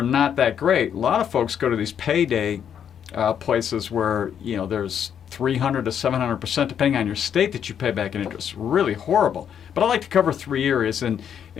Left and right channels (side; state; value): right; quieter; 8.6 dB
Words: not that great. A lot of folks go to these payday places where there's 300 to 700% depending on your state that you pay back in interest. Really horrible. But I like to cover 3 areas in